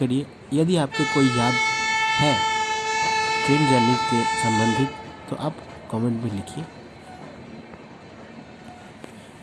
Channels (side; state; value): both; identical; correlation 1.00